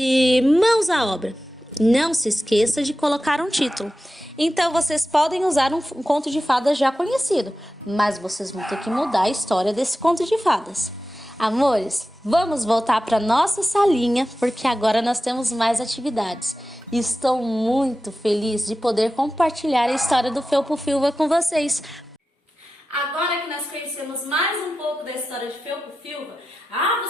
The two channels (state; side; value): normal; both; correlation 0.93